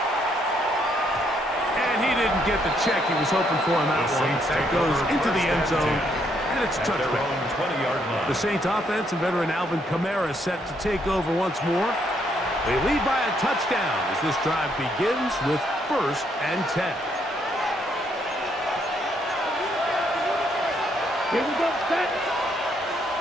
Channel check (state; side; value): normal; both; correlation 0.72